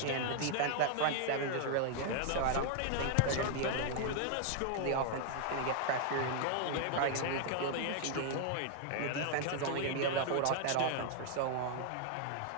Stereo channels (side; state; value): both; different; correlation 0.00